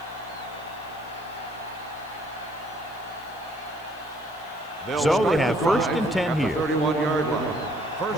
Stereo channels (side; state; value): left; noise; hiss, 26 dB below the sound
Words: So they have first and 10 here. 31-yard line.